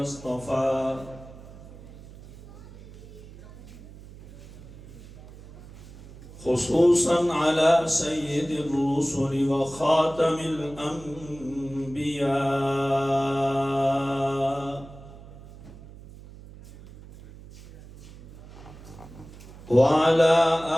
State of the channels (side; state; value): right; noise; hum, 18 dB below the sound